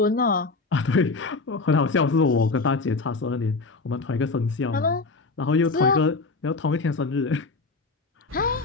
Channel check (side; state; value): right; quieter; 3.8 dB